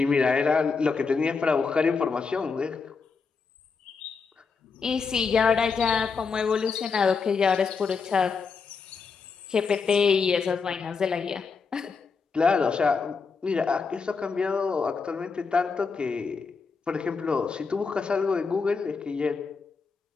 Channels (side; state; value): right; quieter; 5.1 dB